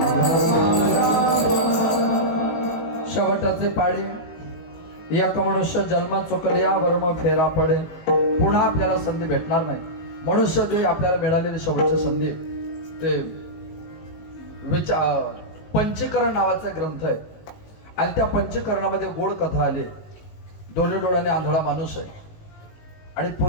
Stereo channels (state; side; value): late; right; 19 ms